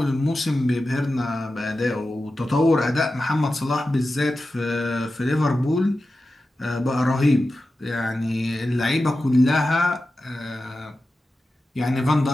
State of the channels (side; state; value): both; normal; correlation 0.93